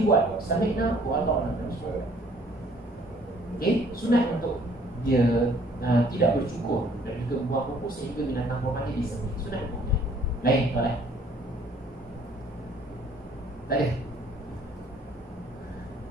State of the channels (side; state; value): both; normal; correlation 0.59